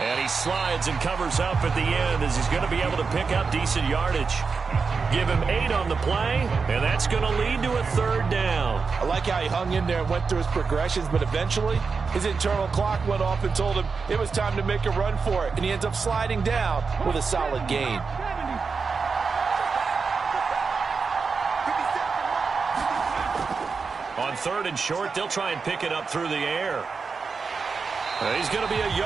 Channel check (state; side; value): quieter; left; 5.0 dB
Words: he slides and covers up at the end as he's going to be able to pick up decent yardage. Give him 8 on the play, and that's going to lead to a third down. I like how he hung in there and went through his progressions, but eventually his internal clock went off and told him it was time to make a run for it, and he ends up sliding down with a solid gain. On third and short, they'll try and pick it up through the air. He's going to be a